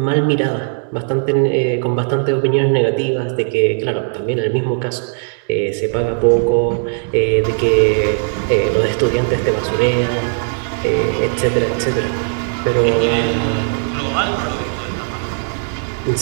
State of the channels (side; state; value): left; silent; 60 dB below the other